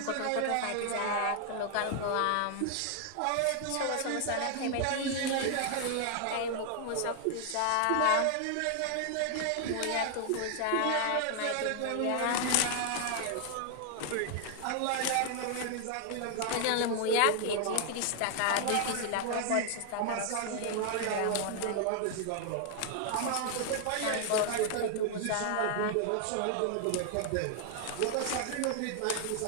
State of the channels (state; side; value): different; both; correlation 0.00